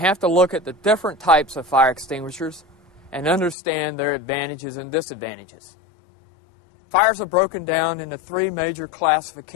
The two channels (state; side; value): drops out; right; at 3.6 s